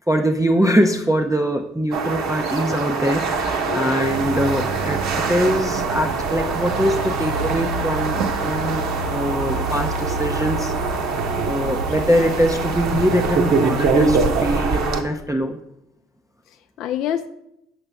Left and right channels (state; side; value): normal; both; correlation 0.62